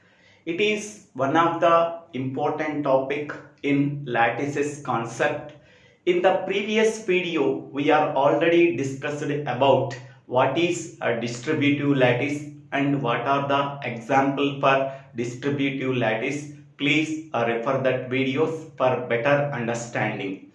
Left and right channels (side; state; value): both; identical; correlation 1.00